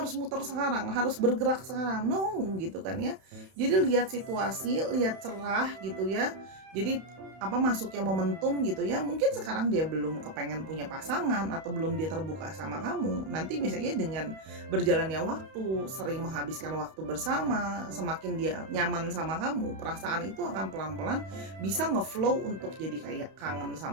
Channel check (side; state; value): left; late; 31 ms